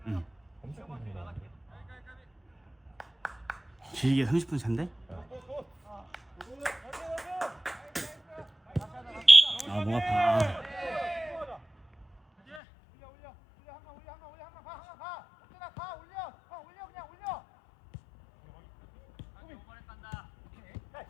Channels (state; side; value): drops out; right; at 12.6 s